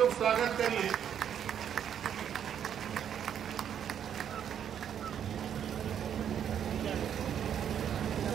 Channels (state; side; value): quieter; left; 9.0 dB